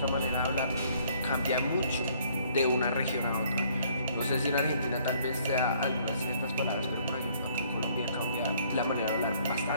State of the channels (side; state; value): both; inverted; correlation -0.62